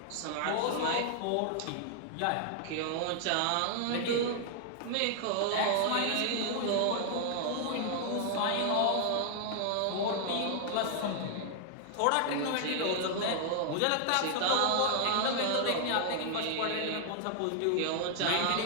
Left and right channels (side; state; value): both; different; correlation 0.00